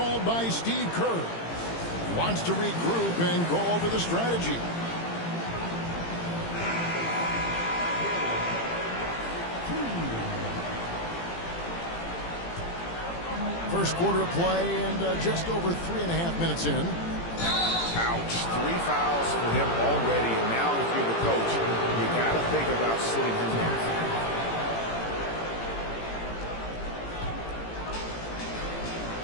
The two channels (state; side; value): late; right; 18 ms